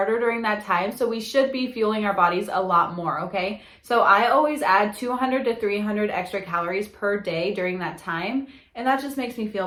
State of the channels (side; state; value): both; identical; correlation 1.00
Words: during that time, so we should be fueling our bodies a lot more, okay? So I always add 200 to 300 extra calories per day during that time, and that just makes me